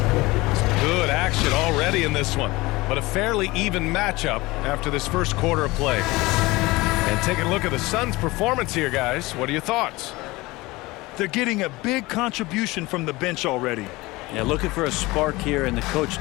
Good action already in this one, but a fairly even matchup after this first quarter of play. And taking a look at the Suns' performance here, guys. What are your thoughts? They're getting a big contribution from the bench already. Yeah, looking for a spark here, and the coach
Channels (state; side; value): quieter; right; 21.3 dB